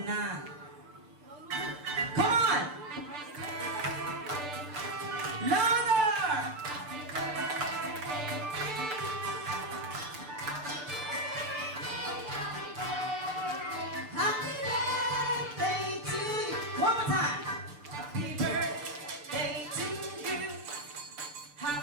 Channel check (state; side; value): late; left; 6.8 ms